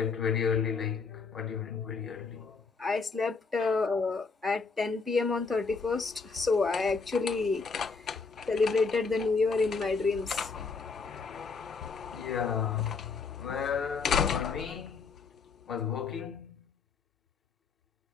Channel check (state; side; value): quieter; right; 4.7 dB